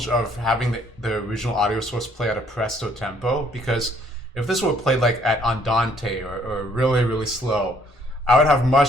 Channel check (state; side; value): normal; both; correlation 0.64